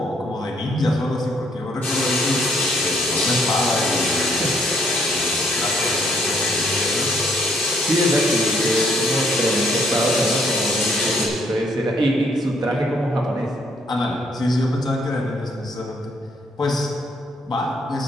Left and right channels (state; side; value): normal; both; correlation 0.69